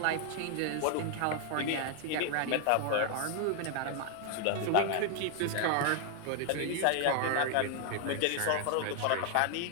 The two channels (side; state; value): both; different; correlation 0.00